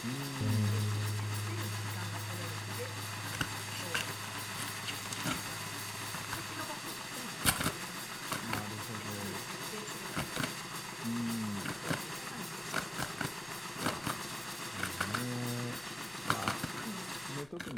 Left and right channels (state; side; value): noise; left; rumble, 24 dB below the sound